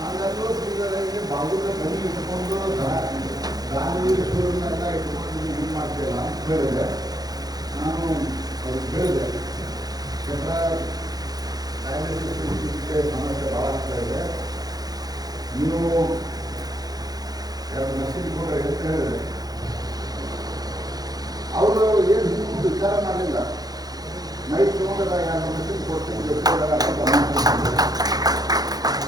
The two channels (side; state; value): left; late; 0.19 ms